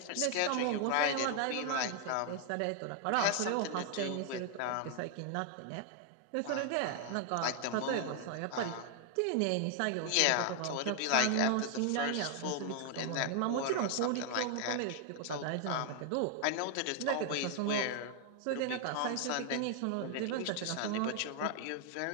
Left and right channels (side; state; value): both; different; correlation 0.00